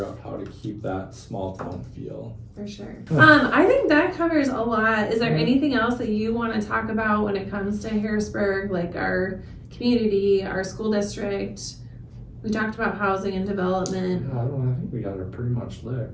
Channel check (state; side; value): identical; both; correlation 1.00